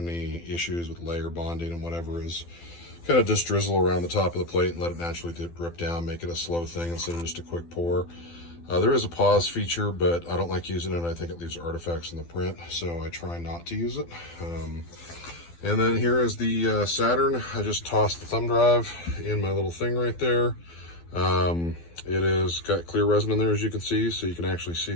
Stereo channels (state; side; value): late; right; 12 ms